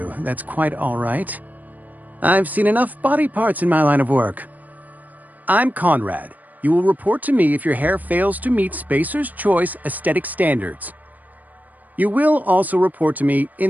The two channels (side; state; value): left; late; 0.081 ms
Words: That's quite all right. I've seen enough body parts in my line of work. I'm Conrad. You will report to me if your hair fails to meet Spacer's Choice aesthetic standards. You will also report to me